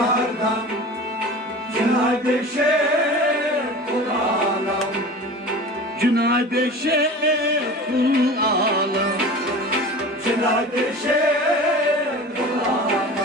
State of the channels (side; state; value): both; normal; correlation 0.36